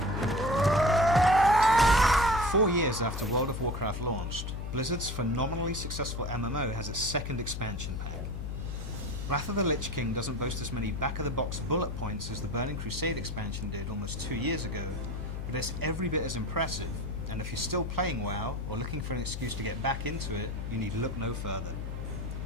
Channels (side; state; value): left; noise; hum, 5 dB below the sound